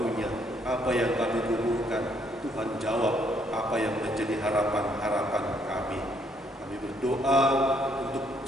Apa yang kami gumulkan, Tuhan jawab apa yang menjadi harapan-harapan kami. Kami berdoa untuk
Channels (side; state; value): both; normal; correlation 0.69